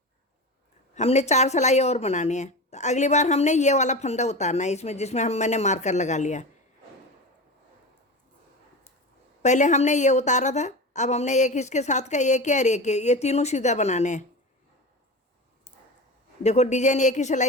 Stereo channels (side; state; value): both; normal; correlation 0.27